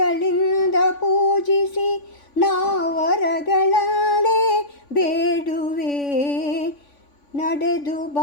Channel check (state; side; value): late; right; 3.5 ms